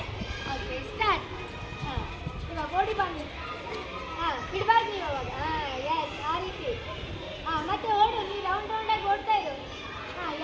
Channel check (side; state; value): both; identical; correlation 1.00